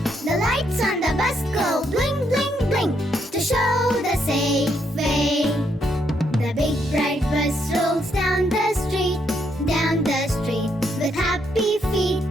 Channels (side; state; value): both; normal; correlation 0.75